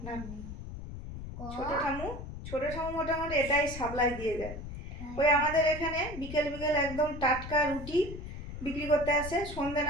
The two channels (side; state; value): left; noise; rumble, 9 dB below the sound